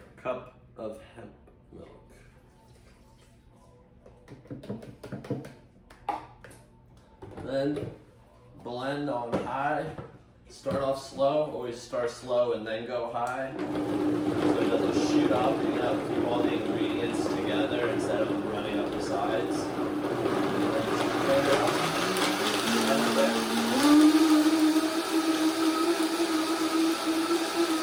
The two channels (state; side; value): identical; both; correlation 1.00